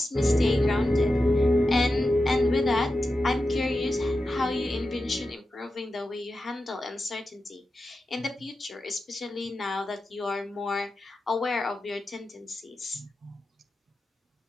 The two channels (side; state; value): both; normal; correlation 0.91